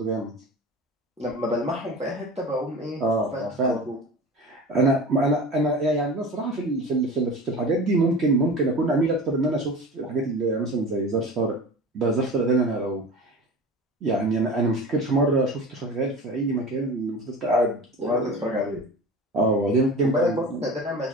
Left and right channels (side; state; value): both; normal; correlation 0.34